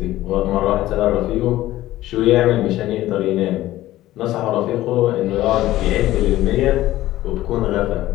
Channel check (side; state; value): right; quieter; 15.3 dB